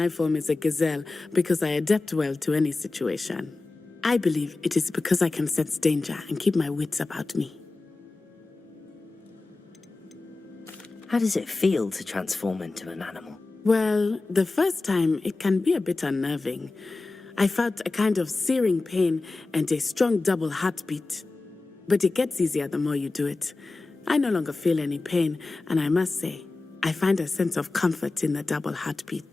form is a gazelle because I adapt well to any situation. I believe it is because I can sense danger and keep my wits about me. How does it feel to transform into an animal? Well, the first time it can be a bit unnerving. I felt a kind of searing pain and a strong double heartbeat. But it gets easier the more you do it. I no longer feel any pain, and I must say, I find a sense of comfort in the double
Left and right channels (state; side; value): quieter; right; 3.4 dB